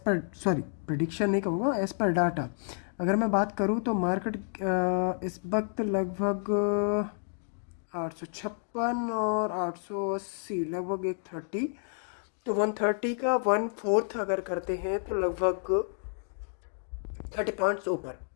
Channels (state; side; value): silent; right; 58 dB below the other